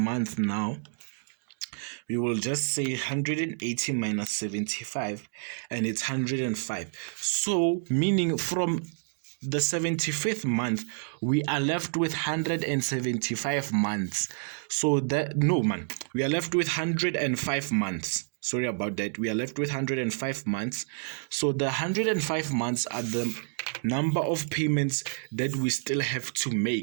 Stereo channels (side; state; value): left; silent; 59 dB below the other